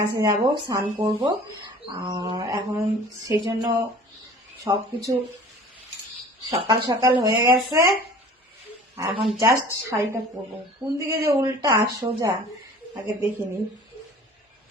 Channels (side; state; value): both; normal; correlation 0.46